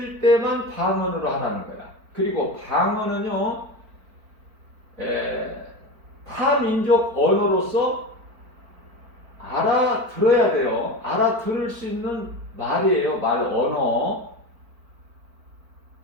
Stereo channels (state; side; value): late; left; 4.5 ms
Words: 때만 방언으로 하라는 거야. 그리고 방언은요 타민족 언어로서 알아들어야 돼요. 알아들을 수 있는 말이에요. 언어.